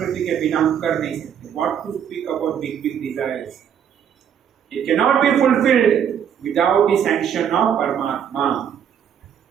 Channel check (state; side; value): quieter; left; 8.6 dB